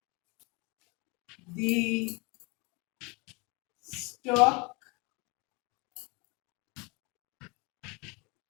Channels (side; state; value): right; quieter; 28.2 dB